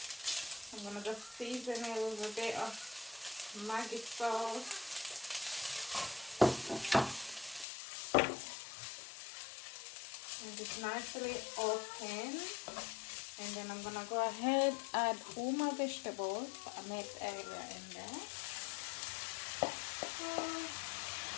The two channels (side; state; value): right; drops out; at 7.7 s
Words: gonna just season it with a bit of Maggi sauce. And just nicely open. And then I'm gonna go ahead add all my vegetables that I made earlier in there.